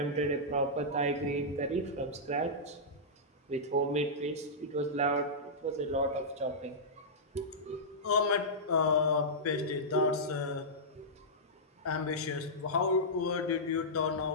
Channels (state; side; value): normal; both; correlation -0.13